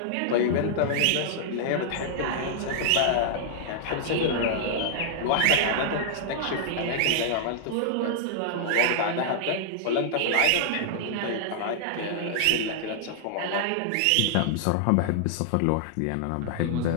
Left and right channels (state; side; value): different; both; correlation -0.01